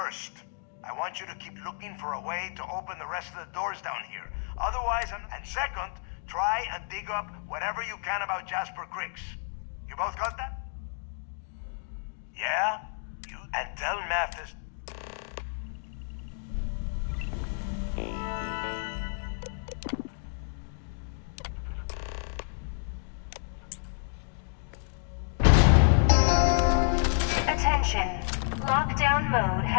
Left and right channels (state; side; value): silent; right; 58 dB below the other